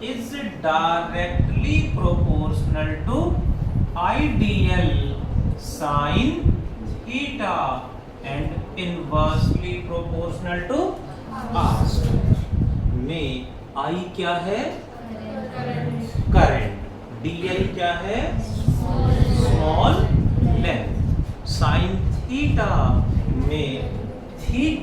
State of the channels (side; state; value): both; identical; correlation 1.00